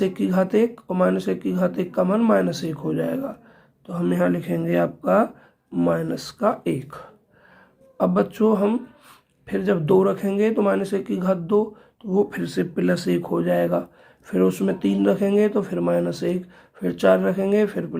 की घात 1 और -1 की घात 1 का मान -1 हो जाएगा। तो हम यहाँ लिखेंगे आपका -1। अब बच्चों हम फिर जब 2 रखेंगे तो -1 की घात 2, तो वो फिर से +1 हो जाएगा। फिर उसमें 3 रखेंगे तो फिर -1, फिर 4 रखेंगे फिर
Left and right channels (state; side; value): identical; both; correlation 1.00